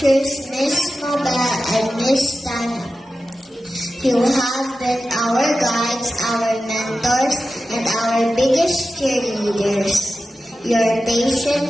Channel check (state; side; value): normal; both; correlation 0.93